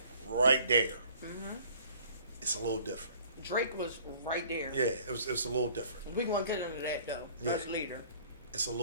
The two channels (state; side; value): inverted; both; correlation -0.54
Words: right there. Mm-hmm. It's a little different. Drake was right there. Yeah, it's a little different. We gonna get into that though. First leader. It's a